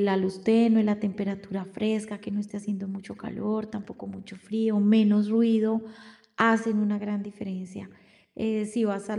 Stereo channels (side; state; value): both; identical; correlation 1.00